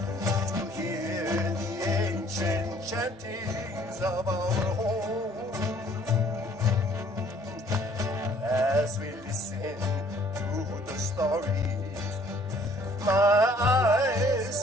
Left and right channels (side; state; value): both; normal; correlation 0.58